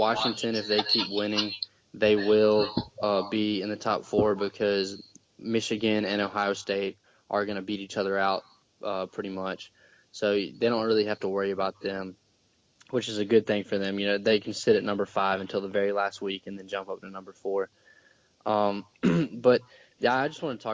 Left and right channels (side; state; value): both; identical; correlation 1.00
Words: if they keep winning, they will be in the top 4 because Michigan and Ohio State are going to beat each other out pretty much. So they don't really have to worry about them, which is a good thing for them. They can sit at number 5 until the very last week and then jump up to number 4. But yeah, I just want to